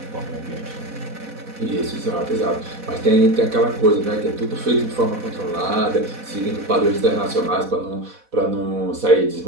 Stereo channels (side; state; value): left; late; 4.1 ms